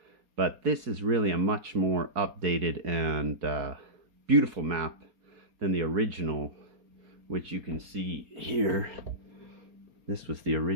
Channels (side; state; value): left; late; 4.3 ms